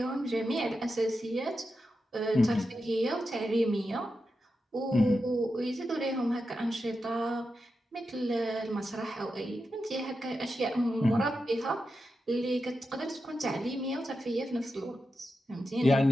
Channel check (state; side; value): normal; both; correlation 0.89